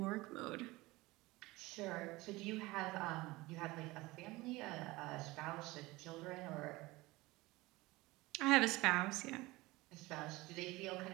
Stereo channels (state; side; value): quieter; left; 20.8 dB